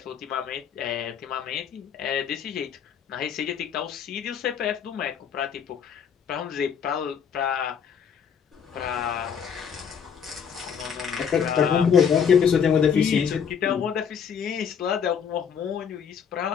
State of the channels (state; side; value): quieter; right; 7.4 dB